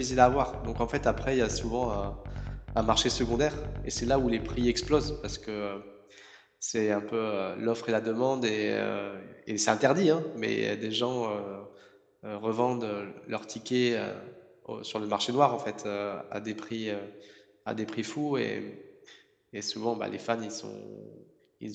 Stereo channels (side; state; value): both; identical; correlation 1.00